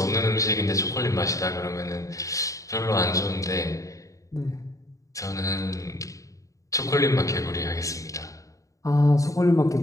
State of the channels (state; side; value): late; right; 0.16 ms